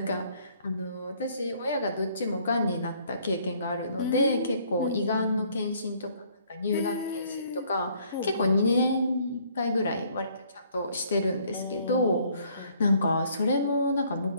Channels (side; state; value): both; inverted; correlation -0.62